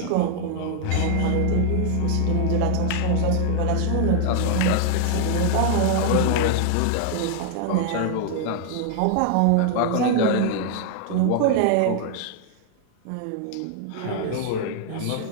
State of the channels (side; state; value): both; different; correlation 0.00